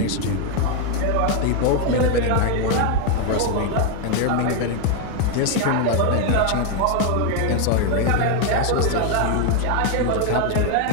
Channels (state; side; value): different; both; correlation 0.00